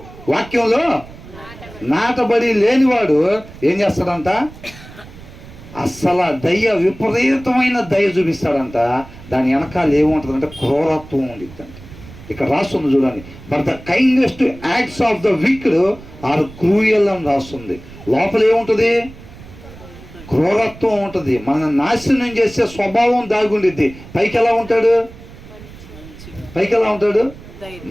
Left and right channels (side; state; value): right; noise; rumble, 18 dB below the sound